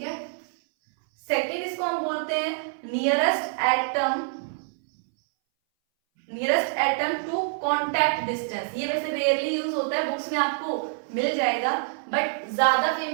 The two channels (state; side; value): silent; left; 60 dB below the other